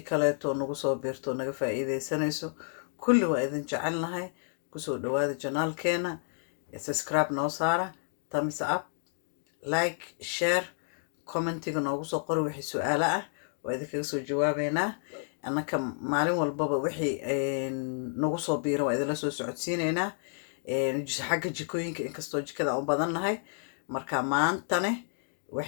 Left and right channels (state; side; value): silent; right; digital silence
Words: kaleeto nagu soo biirto naga faa'iideysanayso kulli waa idin jecelnahay. kusoo dhawaada janaalkeena, subscribe noo saara, thumbs up, like, share, commentiga noogu soo qori wixii su'aalo ah waa idinkaga soo jawaabeynaa. annaka maalin walbaba wixii nagu soo biiran waa idinla soo socodsiineynaa. xagga jikooyinka inkastoo jikada u badannahay. marka maantane